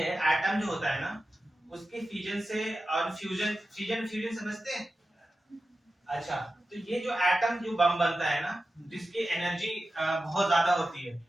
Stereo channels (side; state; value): both; normal; correlation 0.93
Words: एटम जो होता है ना उसके फ्यूजन से, और फ्यूजन फ्यूजन फ्यूजन समझते हैं? अच्छा, तो ये जो एटम जो बम बनता है ना, जिसकी एनर्जी बहुत ज्यादा होती है,